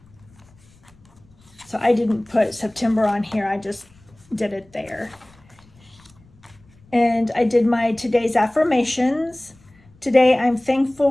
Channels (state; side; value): noise; left; rumble, 29 dB below the sound